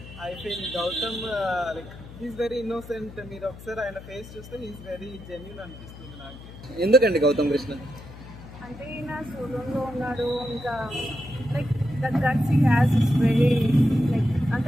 I feel Gautam like he's very innocent. మీరు ఒకసారి ఆయన ఫేస్ చూస్తే హీస్ వెరీ జెన్యూన్ అనిపిస్తుంది నాకు. ఎందుకండి గౌతమ్ కృష్ణ? అంటే ఈయన సోలోలో ఉన్నాడు, ఇంకా like the guts he has is very like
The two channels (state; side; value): noise; left; hum, 16 dB below the sound